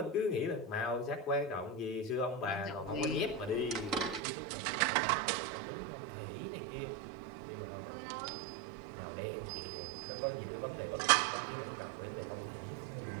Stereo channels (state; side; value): drops out; left; at 4.2 s